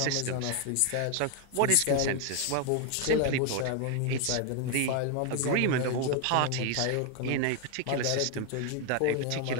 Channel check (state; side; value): different; both; correlation 0.01